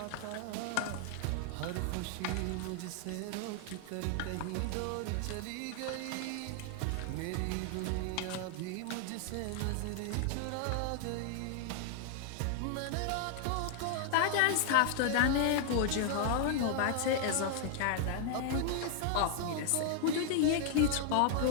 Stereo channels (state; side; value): different; both; correlation 0.00